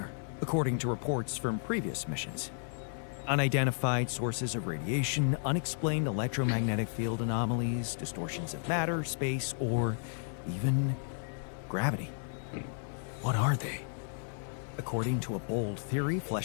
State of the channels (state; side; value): silent; right; digital silence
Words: according to reports from previous missions. Unidentified sources of radiation, unexplained electromagnetic field anomalies, distortions of matter, space, or even gravity. What are they? According to a bold theory